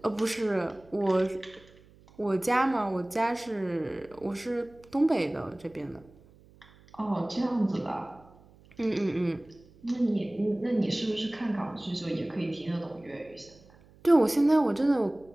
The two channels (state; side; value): noise; right; hum, 26 dB below the sound